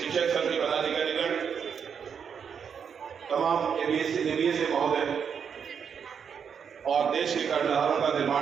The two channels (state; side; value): quieter; left; 7.1 dB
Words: संघ के पदाधिकारीगण, तमाम एबीएसए महोदय और देश के कर्णधारों का